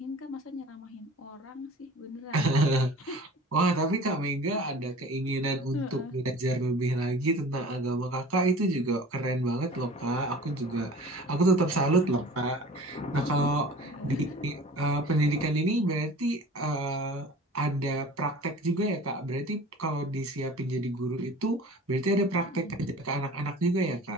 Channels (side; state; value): both; normal; correlation 0.42